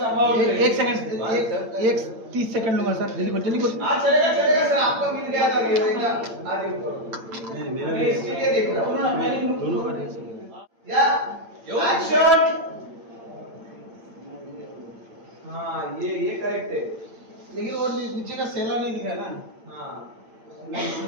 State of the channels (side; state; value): left; late; 8.8 ms